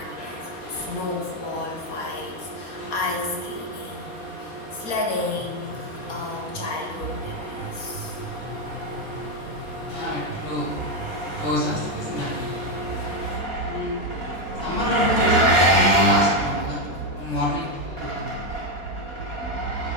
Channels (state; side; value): late; right; 4.2 ms